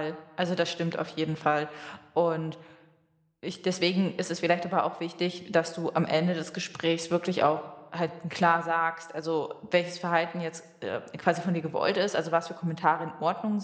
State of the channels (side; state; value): both; identical; correlation 1.00